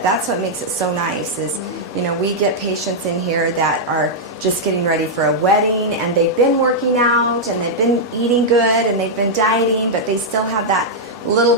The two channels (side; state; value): both; normal; correlation -0.06